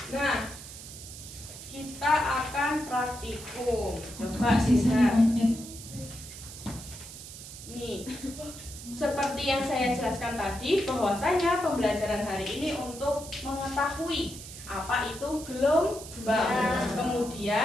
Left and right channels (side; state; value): right; noise; hiss, 13 dB below the sound